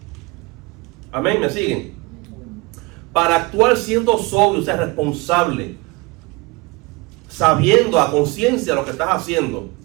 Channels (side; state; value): left; quieter; 24.4 dB